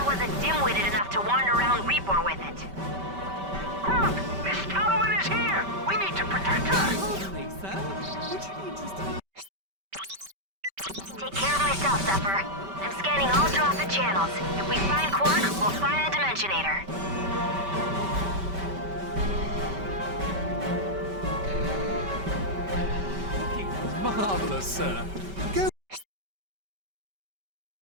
wasn't dim-witted enough to wander around Repor with it. Kronk, Miss Tallowan is here! We need to protect her! Take care of myself, Zephyr. I'm scanning all Drophet channels. If we find Quark, we'll find the Dimensionator. Marvelous, sir. Go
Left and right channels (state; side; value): late; left; 5.2 ms